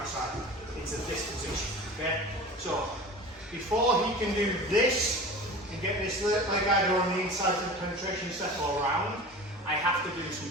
into this position. Okay, so before he can do this and get this leg either on the inside of the penetration settle around, I have to do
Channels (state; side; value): normal; both; correlation 0.36